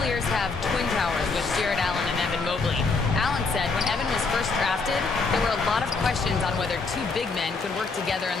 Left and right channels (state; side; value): quieter; right; 4.2 dB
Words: have twin towers with Jared Allen and Evan Mobley. Allen said when Evan was first drafted, there were a lot of questions on whether two big men could work together in